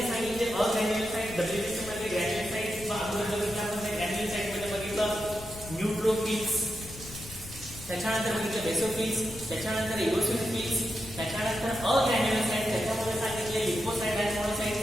सांगितले अग्रॅन्युलोसाइट, WBC मध्ये ग्रॅन्युलोसाइट, अगोदर बघितल्यामध्ये ग्रॅन्युलोसाइट मध्ये बघितलं न्यूट्रोफिल्स, त्याच्यानंतर बघितलं बेसोफिल्स, त्याच्यानंतर इओसिनोफिल्स, त्याच्यानंतर अग्रॅन्युलोसाइट, त्याच्यामध्ये सांगितले लिम्फोसाइट आणि मोनोसाइट.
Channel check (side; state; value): left; noise; rumble, 15 dB below the sound